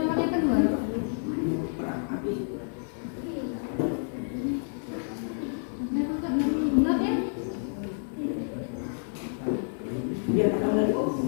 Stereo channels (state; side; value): silent; right; digital silence